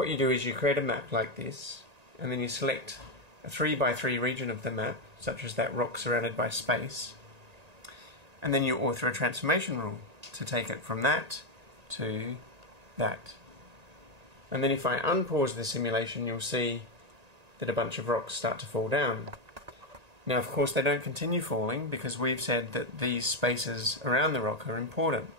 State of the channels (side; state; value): left; late; 1.8 ms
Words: you do is you create a map like this, and then you select a 3x3 region of the map, such as that rock surrounded by space, and then you author a transformation rule to take it from that to that. And then if I unpause the simulation, you'll see that a bunch of rocks start to fall down. Now, of course, they don't continue falling because we've said that these spaces around the rock are important.